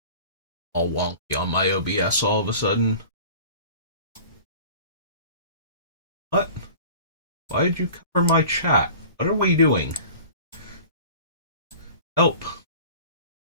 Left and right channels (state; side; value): inverted; both; correlation -0.42